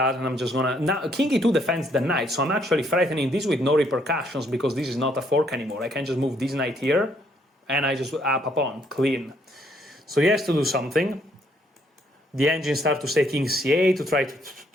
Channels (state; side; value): normal; both; correlation 0.69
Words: I'm just gonna... Now, king e2 defends the knight, so I'm actually threatening this with no repercussions, because this is not a fork anymore. I can just move this knight here, and I just up a pawn, clean. So he has to do something. The engine starts to say king c8 to try